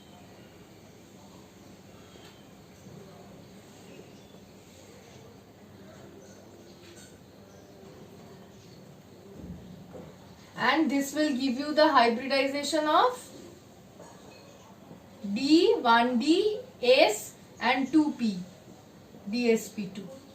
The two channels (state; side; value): identical; both; correlation 1.00